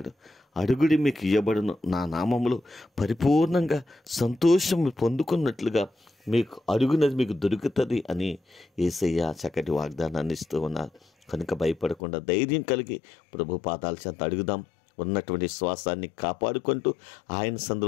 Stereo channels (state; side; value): drops out; right; at 12.0 s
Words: అడుగుడి, మీకు ఇయ్యబడును, నా నామములో పరిపూర్ణంగా సంతోషం పొందుకున్నట్లుగా మీకు అడుగునది మీకు దొరుకుతుంది అని యేసయ్య చక్కటి వాగ్దానాన్ని ఇస్తూ ఉన్నారు. కనుక భయపడకుండా ధైర్యం కలిగి ప్రభు పాదాల చెంత అడుగుదాం. ఉన్నటువంటి శ్వాసాన్ని కాపాడుకుంటూ ఆయన